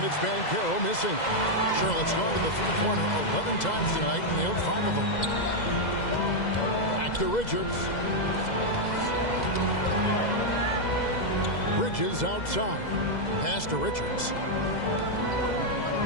it's Banchero missing. Charlotte's gone to the three-pointer 11 times tonight and nailed 5 of them. Back to Richards. Bridges outside. Pass to Richards.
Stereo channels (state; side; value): late; right; 2.0 ms